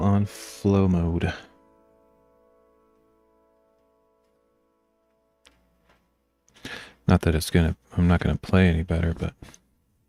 flow mode. Not that I'm not gonna play any better, but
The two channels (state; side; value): identical; both; correlation 1.00